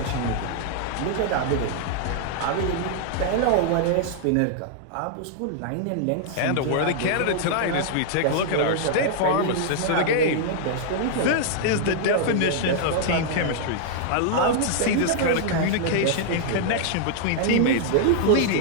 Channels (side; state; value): both; different; correlation -0.01